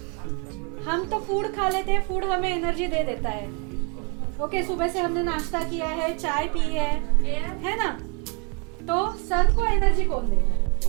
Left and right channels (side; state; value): left; quieter; 35.3 dB